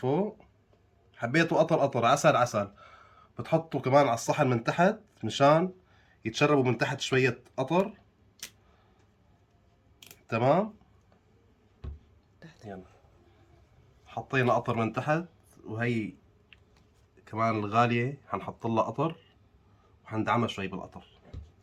حبيتوا قطر قطر، عسل عسل، بتحطوا كمان على الصحن من تحت مشان يتشربوا من تحت شوية قطر. تمام، تحت يلا حطينا قطر من تحت، وهي كمان الغالية حنحط لها قطر وحندعمها شوي بالقطر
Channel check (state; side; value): identical; both; correlation 1.00